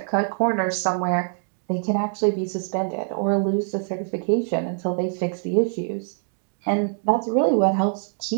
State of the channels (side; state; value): left; silent; digital silence